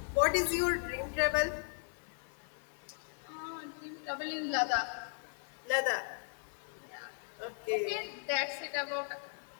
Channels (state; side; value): silent; right; 53 dB below the other